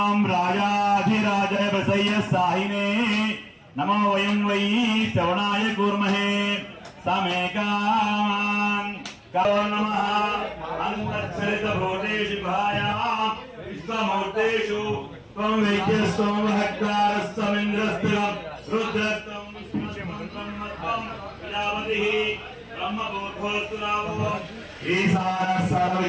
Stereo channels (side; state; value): both; identical; correlation 1.00